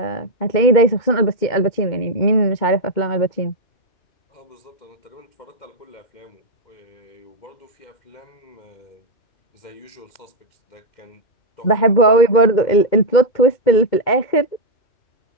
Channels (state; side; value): late; right; 2.2 ms